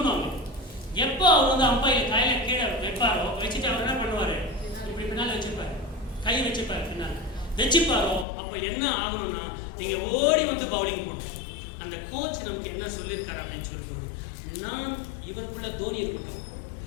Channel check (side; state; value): right; drops out; at 8.2 s